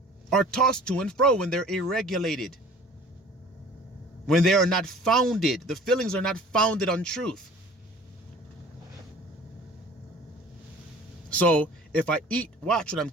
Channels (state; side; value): normal; both; correlation 0.47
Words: are tossed to and fro when they're irregulated. When they are not founded, the feelings are not founded on truth. So if I eat, watch what I'm